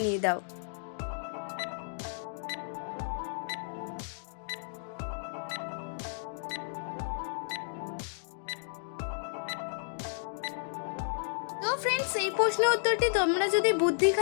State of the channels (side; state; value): right; silent; digital silence